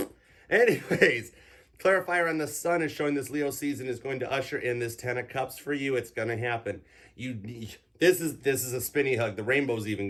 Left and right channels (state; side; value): identical; both; correlation 1.00